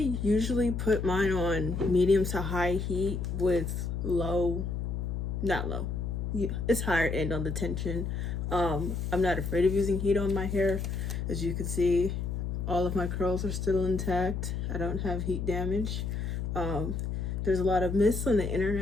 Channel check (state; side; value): noise; left; hum, 3 dB below the sound